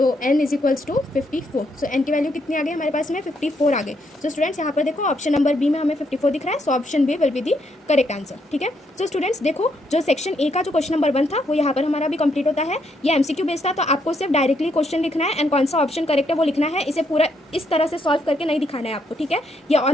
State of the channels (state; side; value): normal; both; correlation 0.75